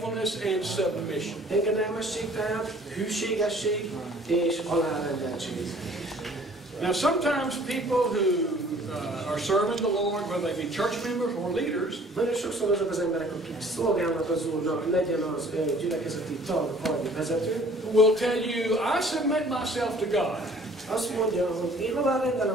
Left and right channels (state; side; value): normal; both; correlation 0.54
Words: and submission. Engedelmesség tehát, hűségesség és alárendeltség. Now sometimes people who are serving the Lord, whether they be church members or leaders, nagyon sokszor azok az emberek, akik szolgálnak az Úrnak, legyen az gyülekezeti tag vagy vezető, will tell you, I submit myself to God. Azt mondja, hogy én